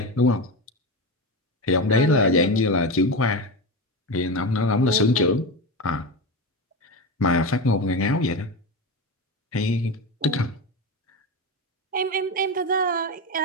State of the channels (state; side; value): normal; both; correlation 0.19